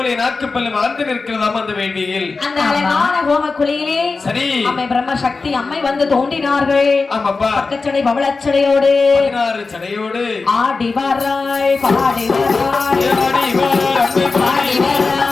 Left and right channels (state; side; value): quieter; right; 4.1 dB